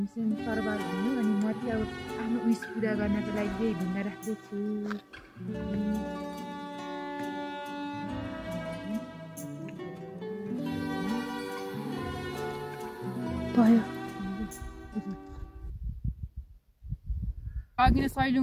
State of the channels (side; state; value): both; identical; correlation 1.00